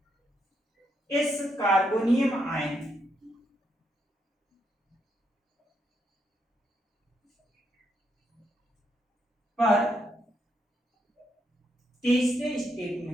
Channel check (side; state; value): both; normal; correlation 0.78